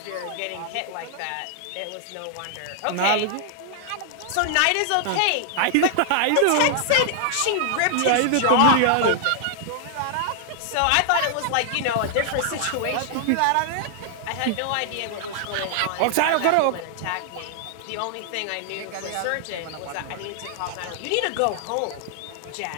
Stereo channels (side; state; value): both; different; correlation -0.01